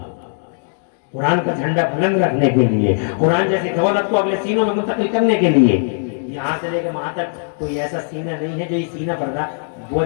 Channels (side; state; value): right; silent; digital silence